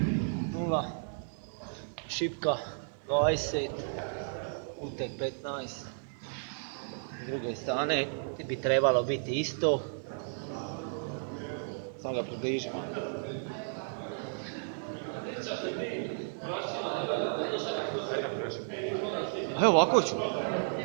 0, šipka 20, utek 15. S druge strane bi trebalo biti isto. Samo ga približimo. Evo ovako ću.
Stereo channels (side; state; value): left; silent; 56 dB below the other